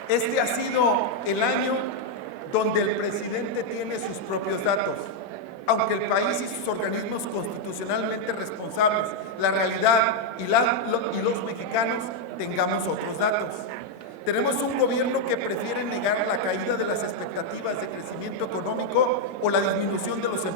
este ha sido el año donde el presidente tiene sus propios datos. Aunque el país y sus organismos constitucionalmente responsables, la realidad y los mexicanos tengamos otros datos. Tenemos un gobierno que prefiere negar la caída de las expectativas de crecimiento económico o la disminución de los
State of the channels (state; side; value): normal; both; correlation 0.00